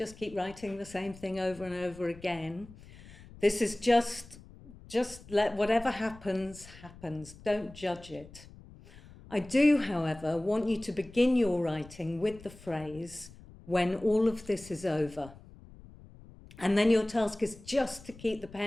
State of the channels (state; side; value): noise; left; rumble, 20 dB below the sound